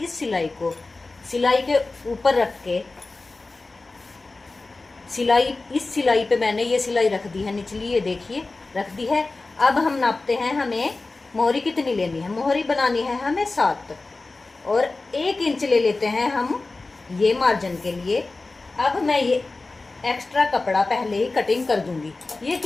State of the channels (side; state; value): right; quieter; 3.5 dB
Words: सिलाई को सिलाई के ऊपर रख के, सिलाई इस सिलाई पे मैंने ये सिलाई रख दी है निचली, ये देखिए रख दी है। अब हम नापते हैं, हमें मोहरी कितनी लेनी है। मोहरी बनानी है हमें 7 और 1 इंच ले लेते हैं हम ये मार्जिन के लिए। अब मैं ये एक्स्ट्रा कपड़ा पहले ही कटिंग कर दूंगी। ये